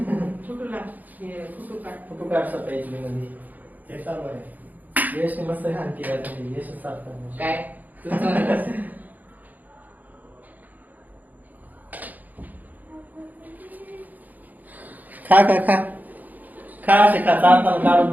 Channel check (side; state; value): left; late; 0.082 ms